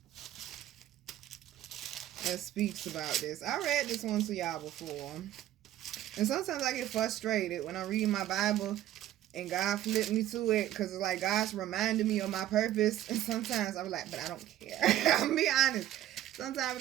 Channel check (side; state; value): left; quieter; 12.8 dB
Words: that speaks about this. I read this one to y'all before. And sometimes I get frustrated when I read my Bible and God flipped me to it, because it's like God's reminding me of my purpose. And sometimes I'm like, but I don't care. I'll be honest. Sometimes I'm